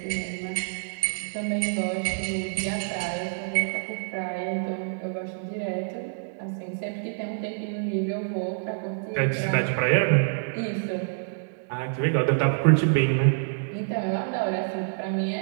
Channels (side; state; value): left; silent; digital silence